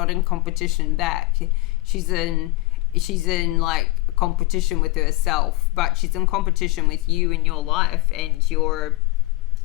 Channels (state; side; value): quieter; right; 20.1 dB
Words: in competition back. She's in like competition with herself, but she's in competition with you in your life, and